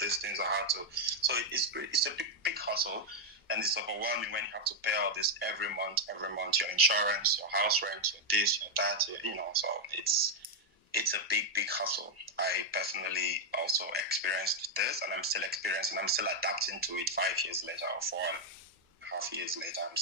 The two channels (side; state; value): both; normal; correlation 0.01